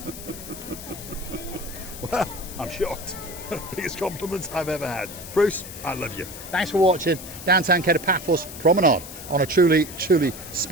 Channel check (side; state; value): left; noise; hiss, 12 dB below the sound